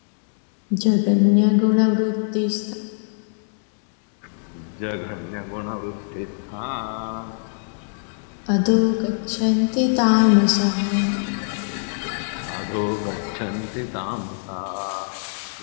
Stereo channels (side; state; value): right; silent; digital silence